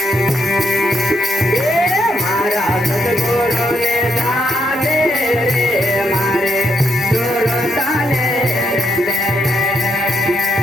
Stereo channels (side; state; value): both; normal; correlation 0.77